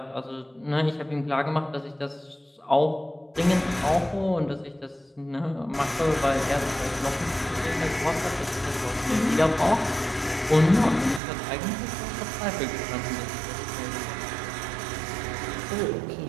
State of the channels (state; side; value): drops out; left; at 11.2 s